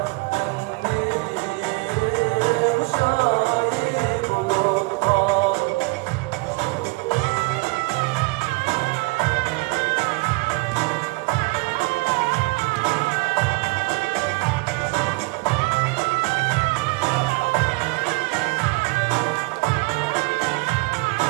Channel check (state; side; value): quieter; left; 27.2 dB